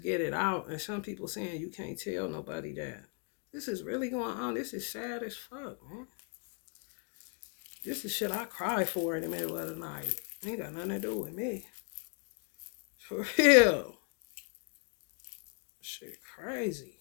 get it out, and some people saying you can't tell nobody that. This is really going on. This is sad as fuck, man. This is shit I cry for in the middle of the night. Ain't got nothing to do with me. For real. Shit crazy.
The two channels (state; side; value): quieter; right; 38.3 dB